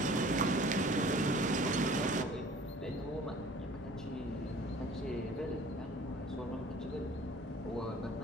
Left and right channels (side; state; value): both; normal; correlation 0.49